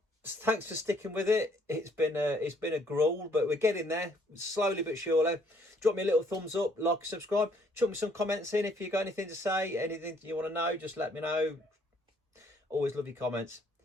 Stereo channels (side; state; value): both; normal; correlation 0.65